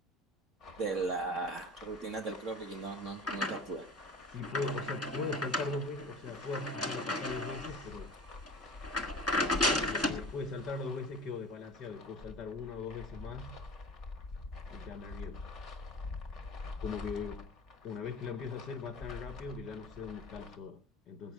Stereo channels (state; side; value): normal; both; correlation 0.38